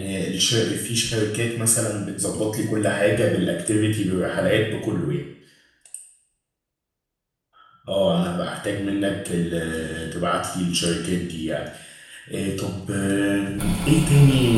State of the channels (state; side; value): identical; both; correlation 1.00